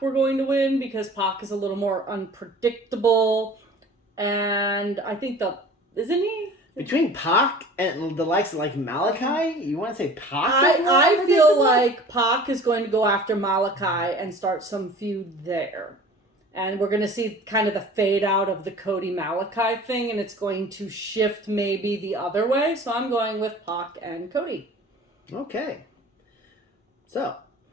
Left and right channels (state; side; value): normal; both; correlation 0.44